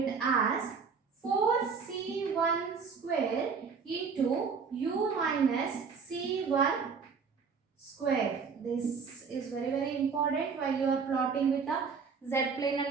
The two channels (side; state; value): left; quieter; 5.6 dB